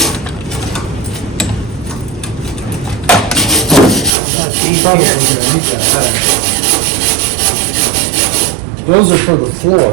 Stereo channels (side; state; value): left; drops out; at 4.2 s